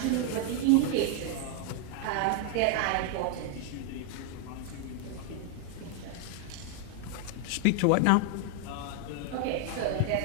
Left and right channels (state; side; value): different; both; correlation 0.00